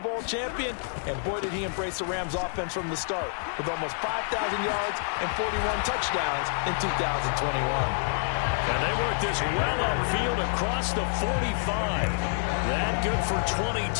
champion, and boy did he embrace the Rams offense from the start with almost 5,000 yards and 41 touchdowns in 2021. And they work this well upfield across the 45. That good for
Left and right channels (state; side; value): silent; right; 60 dB below the other